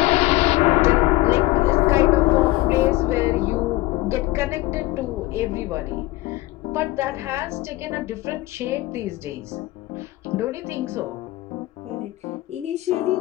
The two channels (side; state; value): right; quieter; 18.7 dB